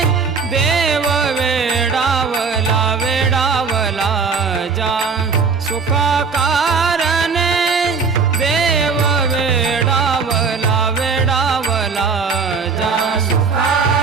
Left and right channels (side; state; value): left; quieter; 5.2 dB